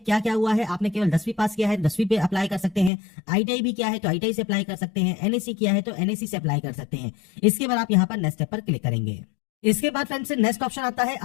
क्या हुआ है। आपने केवल 10वीं पास किया है 10वीं पे अप्लाई कर सकते हैं, आईटीआई भी किया है तो आईटीआई से अप्लाई कर सकते हैं, एनएससी किया है तो एनएससी से अप्लाई कर सकते हैं। इसके बाद आप यहाँ पर नेक्स्ट स्टेप पर क्लिक करेंगे। इसके बाद फ्रेंड्स नेक्स्ट ऑप्शन आता है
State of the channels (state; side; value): drops out; right; at 2.9 s